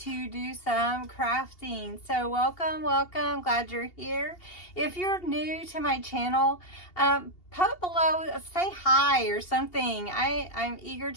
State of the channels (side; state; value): right; late; 2.8 ms